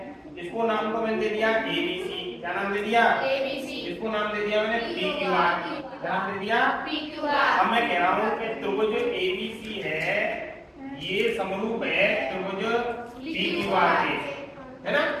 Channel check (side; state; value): both; identical; correlation 1.00